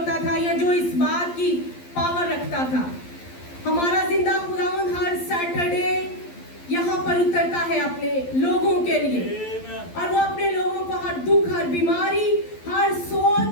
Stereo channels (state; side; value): late; right; 12 ms